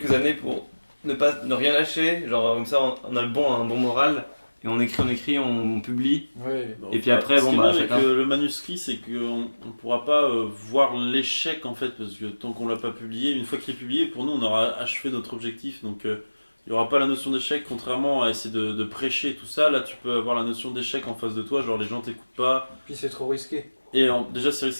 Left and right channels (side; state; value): both; inverted; correlation -1.00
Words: années pour ne rien lâcher, genre comme ça on a un bon moral, et on écrit, on publie. Ouais. Et puis après, ce bon, qui est bah, bien avec chacun. le manuscrit, c'est qu'on ne pourra pas voir l'échec en fait, parce que tant qu'on l'a pas publié, une fois qu'il est publié, pour nous on aura achevé notre objectif. Donc il n'y aura pas la notion d'échec, contrairement à essayer de prêcher tout ça. Là tu peux avoir la notion d'échec en face de toi, genre les gens t'écoutent pas. Puis c'est trop risqué. Et déjà c'est